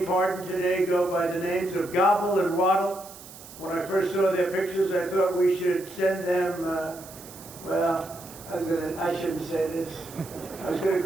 pardoned today go by the names of Gobble and Waddle. When I first saw their pictures, I thought we should send them, well, I shouldn't say this. I was going to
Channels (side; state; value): right; noise; hiss, 17 dB below the sound